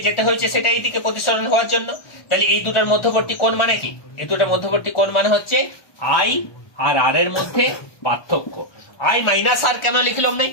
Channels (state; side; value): late; right; 1.2 ms